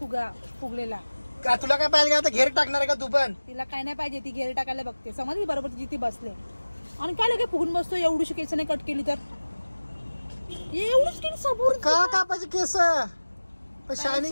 फुगलेला. का तुला काय पाहिजे आता घेर टाकणार आहे का तू पण. तिला काय नाही पाहिजे. ती घेर टाकायला बघते. समजली बरोबर तिची ती बसले. आणि काय लगे फुगून बसतो. एवढीशी केस नाही कट केली तर एवढीच केली सबूर का कापायचे केस.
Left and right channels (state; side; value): inverted; both; correlation -1.00